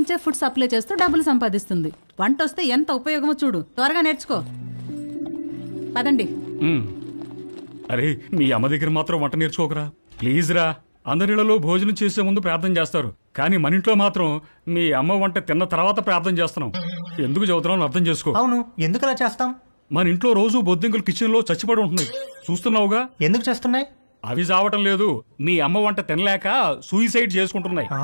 ఫుడ్ సప్లై చేస్తూ డబ్బులు సంపాదిస్తుంది. వంట వస్తే ఎంత ఉపయోగమో చూడు. త్వరగా నేర్చుకో. పదండి. అరే, మీ అమ్మ దగ్గర మాత్రం వంట నేర్చుకోకరా ప్లీజ్ రా. అందరిలో భోజనం చేసే ముందు ప్రార్థన చేస్తారు, కానీ మన ఇంట్లో మాత్రం మీ అమ్మ వంట తిన్న తర్వాత ప్రార్థన చేస్తున్నాం. ఎందుకు చదువుతున్నావు అర్థం చేసుకో. అవును, ఎందుకు అలా చేస్తాం? మన ఇంట్లో రోజు బొద్దింకలు కిచెన్ లో చచ్చిపడి ఉంటున్నాయి, చూస్తున్నావుగా. ఎందుకు చేస్తున్నాయి? అవి చావటం లేదు, మీ అమ్మ వంట తినలేక సూయిసైడ్ చేసుకుంటున్నాయి.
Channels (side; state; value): both; inverted; correlation -1.00